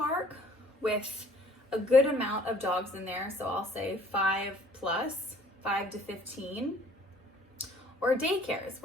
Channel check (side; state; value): both; normal; correlation 0.55